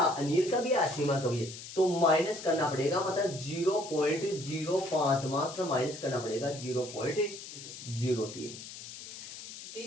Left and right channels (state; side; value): noise; left; hiss, 12 dB below the sound